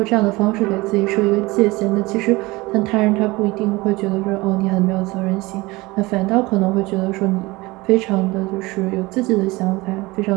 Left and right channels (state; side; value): quieter; left; 21.9 dB